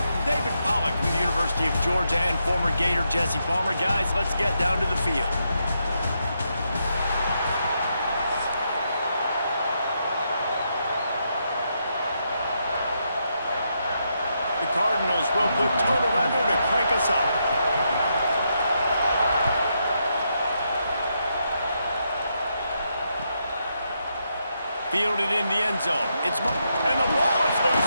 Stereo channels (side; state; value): both; inverted; correlation -0.81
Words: David Pollack from the University of Georgia and former Gator Jesse Palmer. Guys, let's get down to the field. The Cardinals will put total weather to crank us up. Fielded in the end zone. And the ball is loose